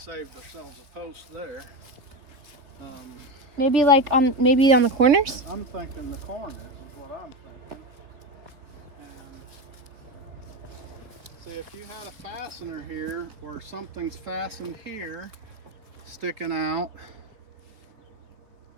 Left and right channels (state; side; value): late; left; 4.0 ms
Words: ourselves a post there. Maybe like maybe on the corners? I'm thinking the corners is what I'm thinking. And see, if you had a fastener here where something's fastened here, sticking out,